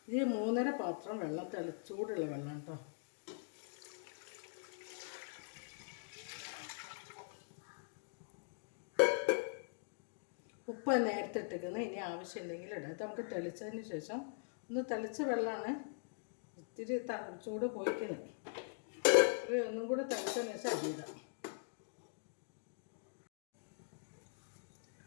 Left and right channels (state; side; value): silent; right; digital silence